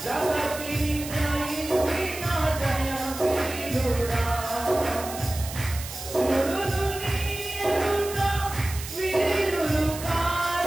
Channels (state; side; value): noise; right; hiss, 11 dB below the sound